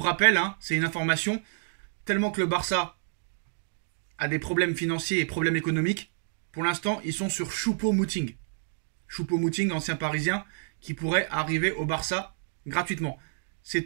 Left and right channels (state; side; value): silent; left; digital silence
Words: rappel, c'est une information, tellement que le Barça a des problèmes financiers et problèmes économiques. Pour l'instant, ils sont sur Choupo-Moting. Choupo-Moting, ancien parisien, qui pourrait arriver au Barça gratuitement. C'est